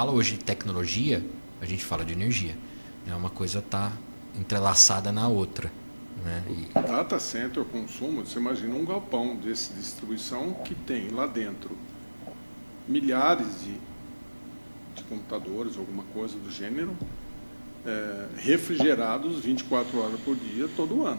hoje de tecnologia, a gente fala de energia. Uma coisa está entrelaçada na outra, né? Data center, consumo, você imagina um galpão de distribuição que tem lá dentro milhares de computadores, alguma coisa do gênero, refrigerados 24 horas por dia, todo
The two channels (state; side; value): inverted; both; correlation -1.00